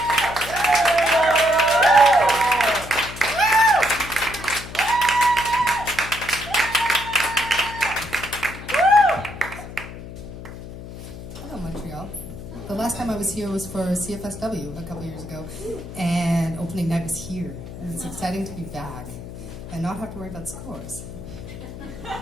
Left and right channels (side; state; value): left; noise; hum, 12 dB below the sound